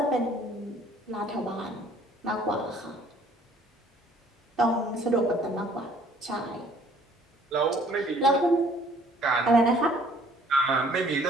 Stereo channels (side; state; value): both; normal; correlation 0.58